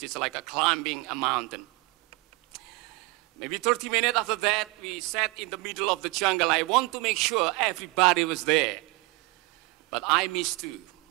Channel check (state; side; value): quieter; left; 25.7 dB